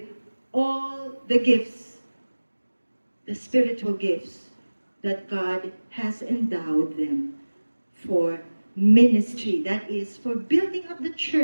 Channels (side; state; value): both; inverted; correlation -1.00